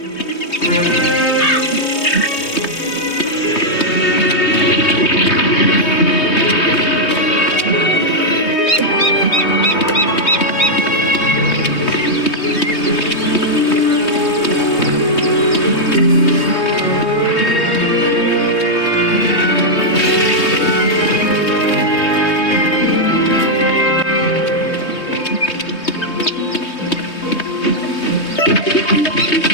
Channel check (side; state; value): right; late; 3.2 ms